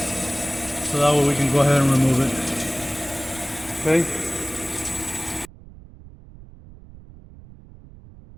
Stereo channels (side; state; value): right; noise; rumble, 20 dB below the sound